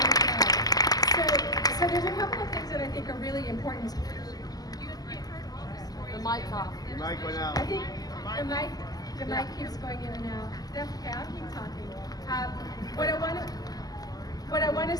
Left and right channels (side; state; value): right; late; 0.18 ms